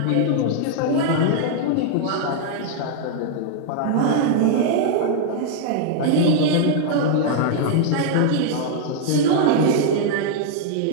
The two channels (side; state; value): both; different; correlation -0.01